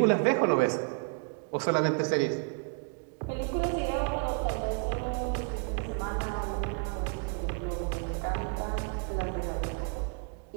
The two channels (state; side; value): quieter; left; 37.4 dB